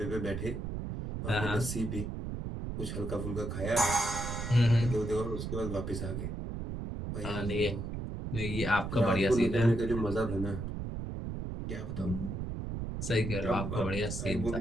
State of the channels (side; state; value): right; noise; rumble, 5 dB below the sound